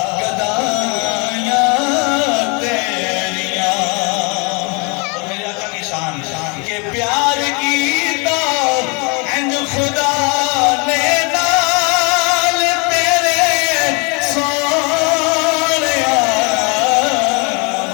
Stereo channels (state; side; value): quieter; right; 31.2 dB